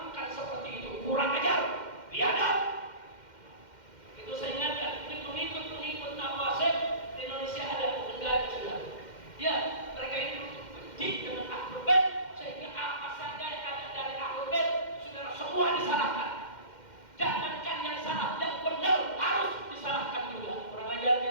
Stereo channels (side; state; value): right; late; 2.1 ms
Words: seperti itu. Kurang ajar, biadab. Itu saya ingatkan, ini pengikut Nawasib di Indonesia ada, enggak ada, saudara. Ya, mereka ini benci dengan Ahlul Bait sehingga apa saja yang ada dari Ahlul Bait, saudara, semua disalahkan. Jangankan yang salah, yang benar harus disalahkan juga. Kurang ajar